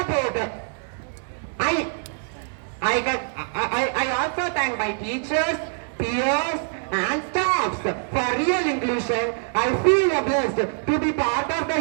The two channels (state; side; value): silent; left; digital silence